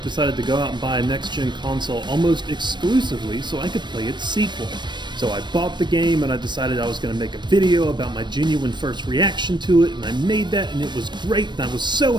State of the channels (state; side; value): late; left; 0.22 ms